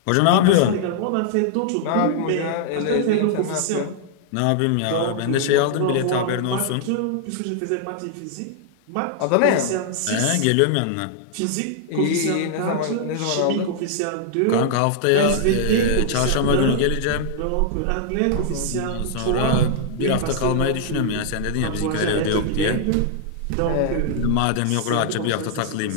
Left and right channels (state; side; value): different; both; correlation -0.01